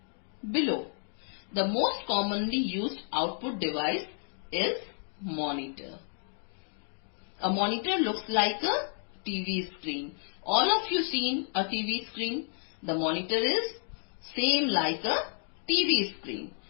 below. The most commonly used output device is monitor. A monitor looks like a TV screen. All of you seen a TV screen? The monitor is same like a TV screen.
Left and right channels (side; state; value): right; silent; digital silence